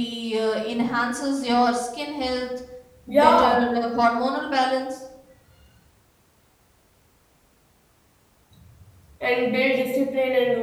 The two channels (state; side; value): identical; both; correlation 1.00